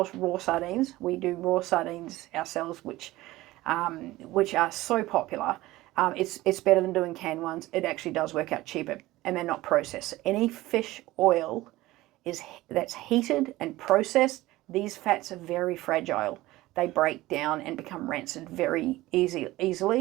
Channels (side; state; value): left; quieter; 17.8 dB